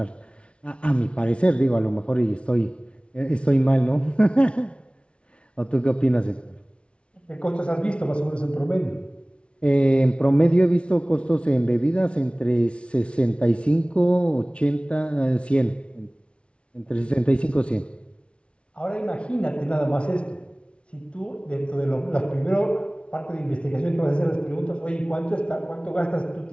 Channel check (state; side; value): late; right; 0.059 ms